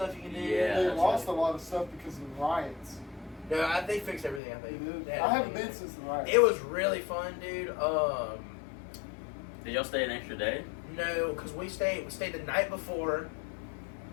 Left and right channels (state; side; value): drops out; right; at 4.4 s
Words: you can do. Yeah. They that's lost right. a lot of stuff because of the riots. No, they fixed everything, I They think. did. They had I haven't everything. been since the riots. It was really fun, dude. Did y'all stay an extra day? No, because we stayed the night before,